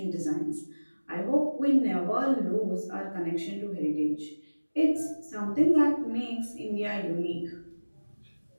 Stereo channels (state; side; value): inverted; both; correlation -1.00